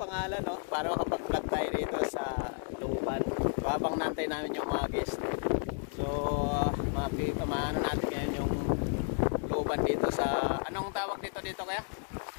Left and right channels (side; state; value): right; silent; digital silence